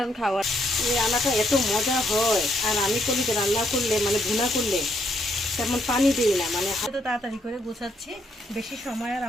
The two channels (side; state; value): both; normal; correlation 0.73